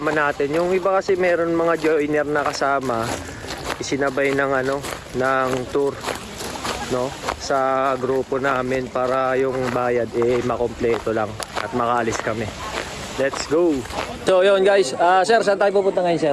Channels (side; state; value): both; identical; correlation 1.00